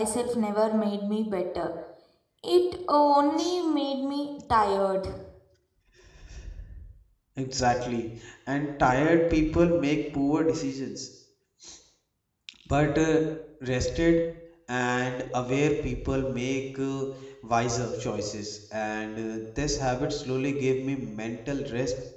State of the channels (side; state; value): both; identical; correlation 1.00